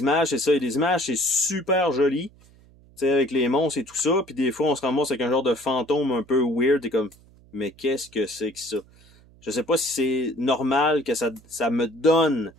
c'est ça, il y a des images, c'est super joli. Tu sais, avec les monstres et tout ça, puis des fois, on se ramasse avec un genre de fantôme un peu weird, et comme, mais qu'est-ce que c'est que ça? Je sais pas si c'est normal que ça me donne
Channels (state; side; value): noise; right; hum, 27 dB below the sound